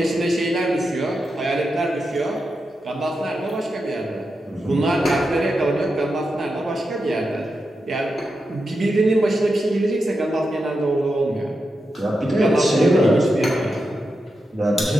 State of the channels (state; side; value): normal; both; correlation 0.88